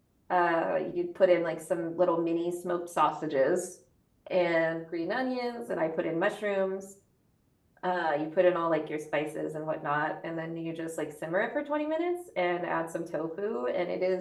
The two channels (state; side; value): identical; both; correlation 1.00